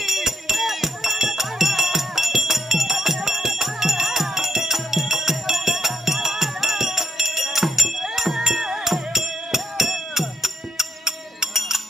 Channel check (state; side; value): normal; both; correlation 0.78